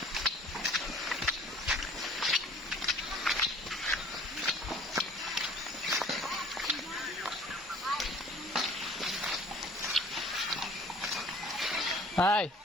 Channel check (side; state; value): both; normal; correlation 0.50